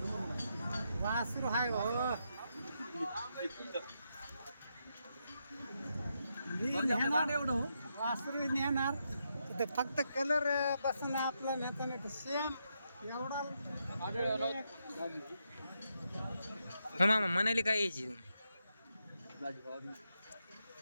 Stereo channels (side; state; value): both; inverted; correlation -0.82